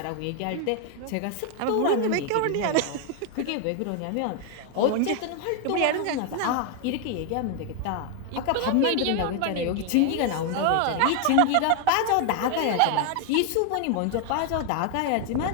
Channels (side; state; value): both; different; correlation 0.00